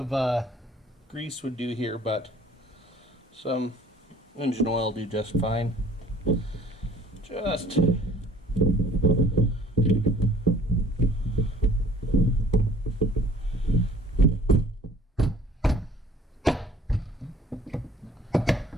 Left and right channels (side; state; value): both; normal; correlation 0.53